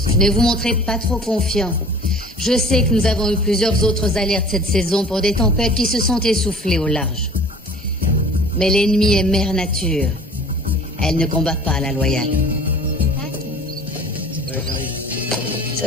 Ne vous montrez pas trop confiant. Je sais que nous avons eu plusieurs autres alertes cette saison pour des tempêtes qui se sont essoufflées au large. Mais l'ennemi est mère nature. Elle ne combat pas à la loyale. Ça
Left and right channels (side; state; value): both; normal; correlation 0.46